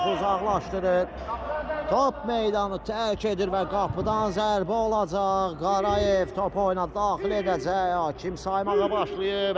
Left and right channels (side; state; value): both; identical; correlation 1.00